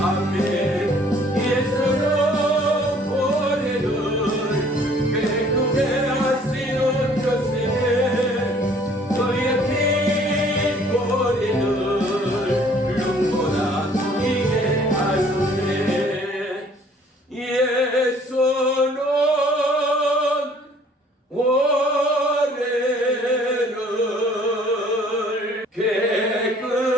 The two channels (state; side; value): normal; both; correlation 0.57